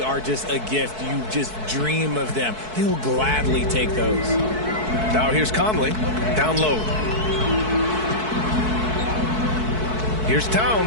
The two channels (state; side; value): late; left; 4.6 ms